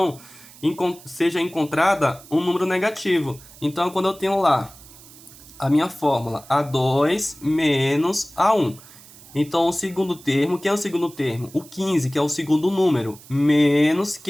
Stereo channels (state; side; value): noise; right; hiss, 21 dB below the sound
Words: seja encontrada um número negativo. Então, quando eu tenho lá a minha fórmula A2 menos A1. Então, o segundo termo, quem é o segundo termo? O 15, que é o segundo número, menos,